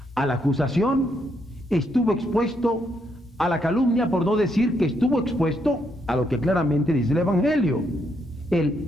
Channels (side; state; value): both; normal; correlation 0.76